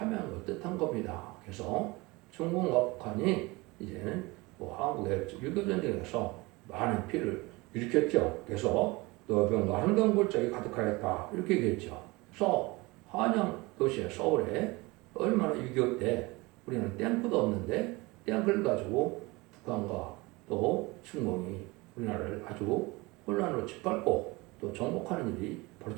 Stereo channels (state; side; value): quieter; left; 23.5 dB